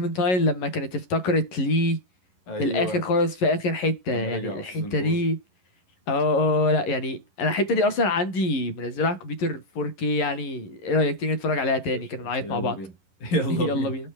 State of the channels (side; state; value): right; late; 11 ms